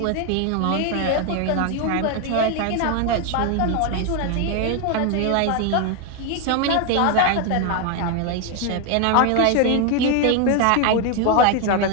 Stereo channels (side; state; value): both; different; correlation 0.01